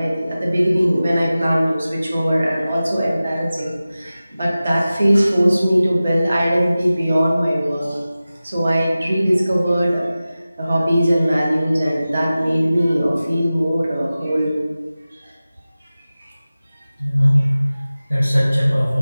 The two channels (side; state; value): both; inverted; correlation -0.96